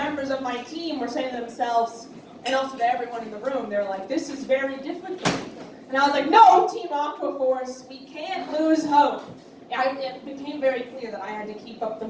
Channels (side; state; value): both; identical; correlation 1.00